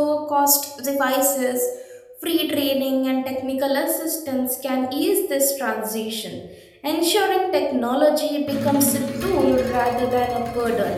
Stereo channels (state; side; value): identical; both; correlation 1.00